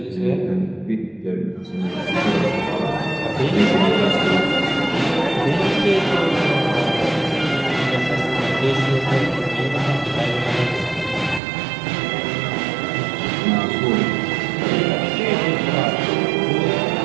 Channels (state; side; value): drops out; left; at 11.4 s